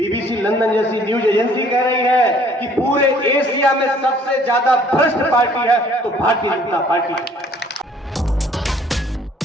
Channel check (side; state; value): both; normal; correlation 0.58